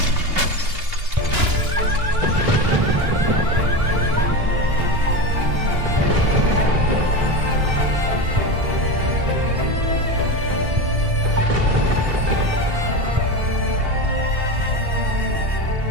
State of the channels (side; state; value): left; late; 2.9 ms